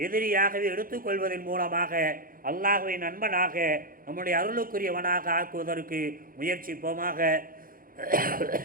எதிரியாகவே எடுத்துக்கொள்வதன் மூலமாக அல்லாஹ்வை நண்பனாக நம்முடைய அருளுக்குரியவனாக ஆக்குவதற்கு முயற்சிப்போமாக.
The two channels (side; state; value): left; late; 0.41 ms